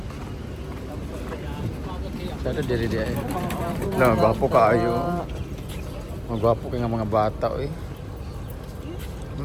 Sada diri di ay. Hala, magwapo ka ayo. Magwapo ka nga mga bata, eh.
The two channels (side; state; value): both; identical; correlation 1.00